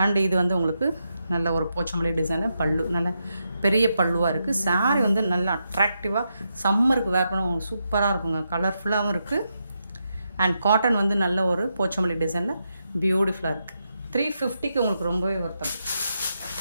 இது வந்து உங்களுக்கு நல்ல ஒரு போச்சம்பள்ளி டிசைனில் பல்லு, நல்ல பெரிய பல்லுவாக இருக்குது. சாரீ வந்து நல்லா அட்ராக்டிவாக சம்மருக்கு வேர் பண்ண உங்களுக்கு சூப்பராக இருக்குங்க. கலர்ஃபுல்லாகவும் இருக்குது. அண்ட் காட்டன் வந்து நல்ல ஒரு போச்சம்பள்ளி டிசைனில் பியூட்டிஃபுல்லாக இருக்குது. 350க்கு உங்களுக்கு ரொம்பவே ஒர்த்தது.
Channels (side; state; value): both; inverted; correlation -0.84